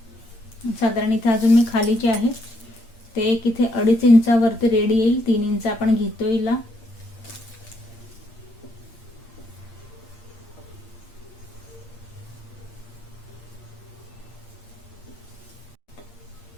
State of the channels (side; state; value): right; late; 8.6 ms